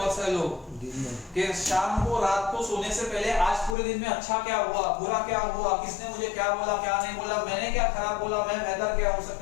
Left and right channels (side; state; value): right; drops out; at 3.8 s